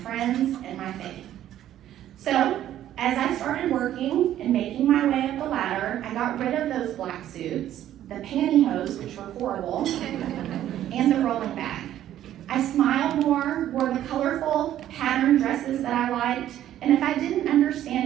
and my faith. So, as I started working and making my way up the ladder, I got rid of those black suits, the pantyhose, which were horrible, and the rolling bag. I smiled more, wore the colorful patterned dresses that I liked, and if I didn't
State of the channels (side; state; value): left; quieter; 12.0 dB